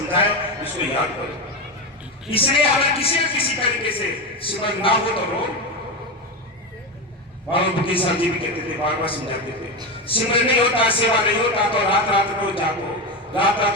इसको याद करो। इसलिए हमें किसी न किसी तरीके से सिमरन ना हो तो रो। बाबा बुद्धि साहब जी भी कहते थे, बार बार समझाते थे, सिमरन नहीं होता, सेवा नहीं होता तो रात रात को जागो, रात रात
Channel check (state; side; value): normal; both; correlation 0.16